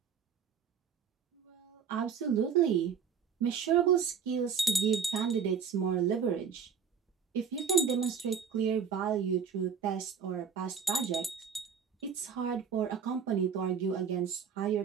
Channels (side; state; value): left; quieter; 6.7 dB